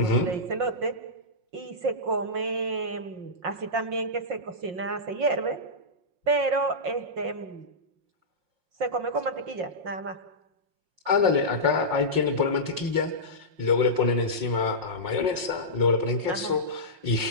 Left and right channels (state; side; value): late; left; 5.6 ms